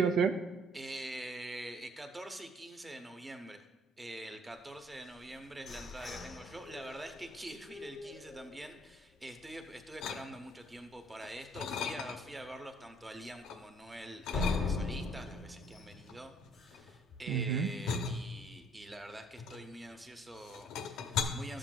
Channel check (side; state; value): both; normal; correlation 0.61